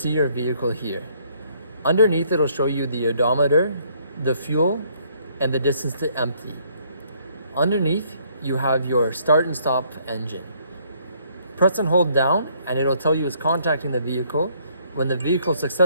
your vehicle here. Underneath, it'll show you the odometer, the fuel, and the distance to empty. Underneath, you have your start and stop engine. Press and hold down, and it'll tell you it's contacting the vehicle. When the vehicle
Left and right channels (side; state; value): both; inverted; correlation -0.65